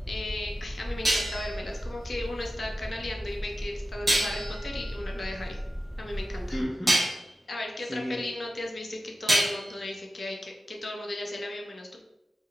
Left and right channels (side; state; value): both; normal; correlation 0.93